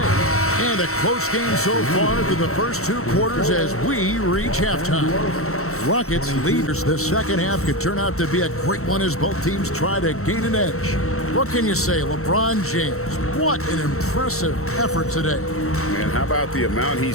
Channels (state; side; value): late; right; 0.64 ms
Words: And a close game so far through the first 2 quarters as we reach halftime. Rockets leaders the second half could turn out to be a great one as both teams try to gain an edge. What can you say, LeBron James? What an impressive effort today. And how about the amount